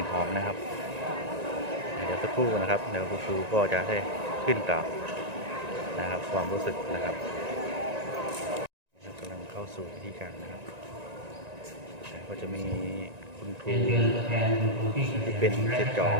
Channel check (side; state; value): left; late; 1.9 ms